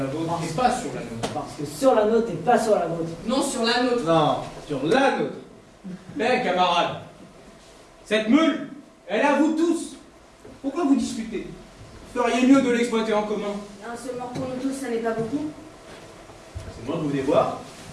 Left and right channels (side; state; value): both; identical; correlation 1.00